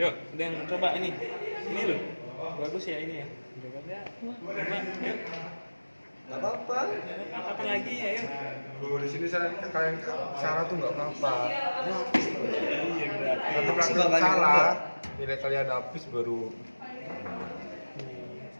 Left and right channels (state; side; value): inverted; both; correlation -1.00